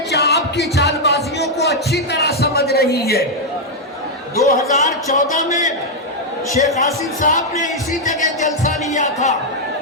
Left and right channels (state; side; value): normal; both; correlation -0.02